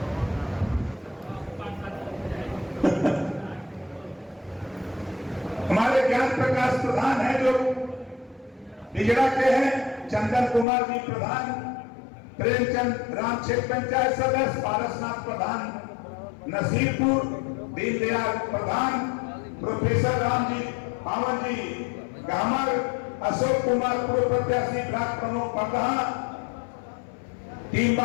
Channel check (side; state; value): right; drops out; at 10.7 s